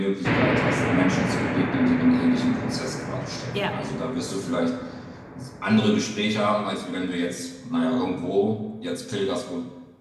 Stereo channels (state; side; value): identical; both; correlation 1.00